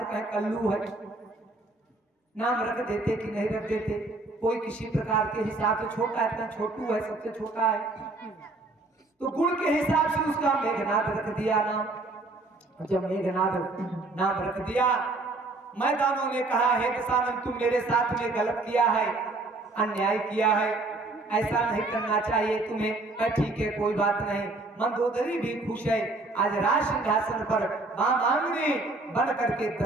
कहे कल्लू है, नाम रख देते कि नहीं रख देते। कोई किसी प्रकार के हिसाब से छोटा है, इतना छोटू है, सबसे छोटा है, तो गुण के हिसाब से उसका मेघनाद रख दिया नाम। जब मेघनाद नाम रख दिया, मैदानों ने कहा हे दशानन तुम मेरे साथ में गलत किया है, अन्याय किया है, ऐसा नहीं करना चाहिए तुम्हें। ठीक है कोई बात नहीं। मंदोदरी भी खुश है, आज राज सिंहासन पर मांगनी बन करके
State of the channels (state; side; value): quieter; left; 3.2 dB